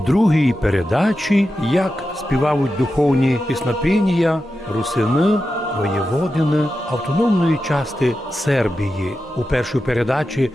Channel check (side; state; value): both; normal; correlation 0.91